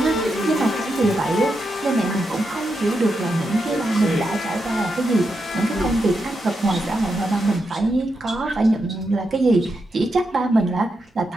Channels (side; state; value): both; normal; correlation 0.85